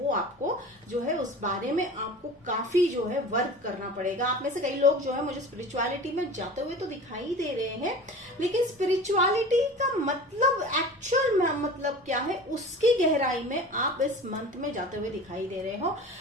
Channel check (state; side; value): normal; both; correlation 0.38